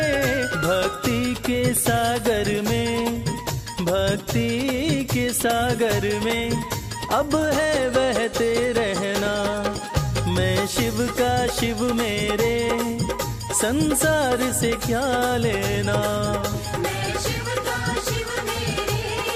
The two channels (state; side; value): identical; both; correlation 1.00